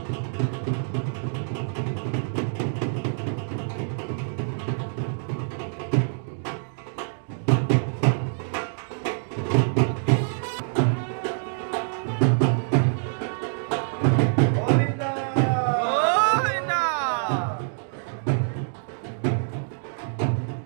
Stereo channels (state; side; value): silent; left; digital silence